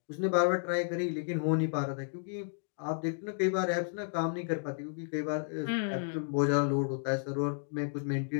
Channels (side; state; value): right; silent; digital silence